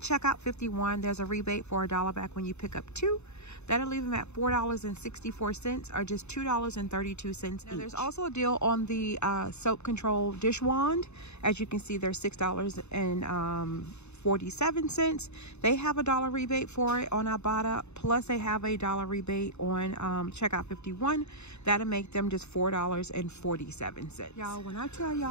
51, there's a rebate for $1 back when you pick up 2. That'll leave them at $4.64, or just $2.32 each. There's also a deal on the soap control dish wand. As you can see, there's $6.47. They have a $1 rebate for it on Ibotta, plus they have a $1 rebate on checkout 51. That'll make them just $4.47. Y'all, when I tell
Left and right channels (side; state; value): right; late; 0.81 ms